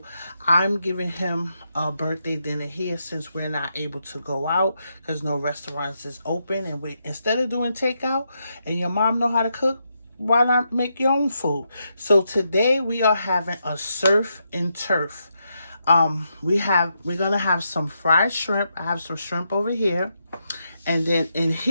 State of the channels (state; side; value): inverted; both; correlation -0.82